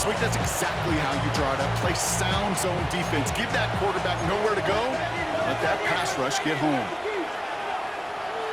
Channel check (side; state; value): both; identical; correlation 1.00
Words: week, that's exactly how you draw it up. Play sound zone defense. Give that quarterback nowhere to go. Let that pass rush get home.